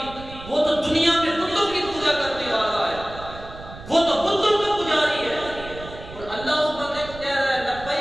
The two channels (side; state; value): right; noise; rumble, 15 dB below the sound